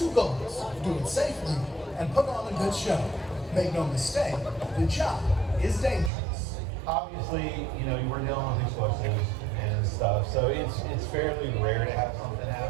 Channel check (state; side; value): drops out; left; at 6.1 s